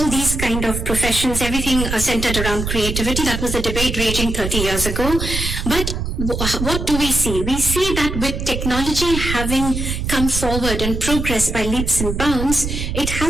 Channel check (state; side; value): noise; right; rumble, 4 dB below the sound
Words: these kind of professions, everything centered around creativity. That was the debate raging 30 years ago. But what do we see? We see that with technology having come forward and progressed by leaps and bounds, it